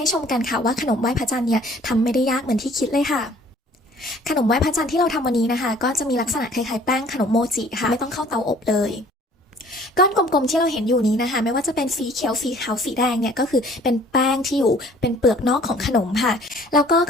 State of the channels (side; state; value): both; normal; correlation 0.54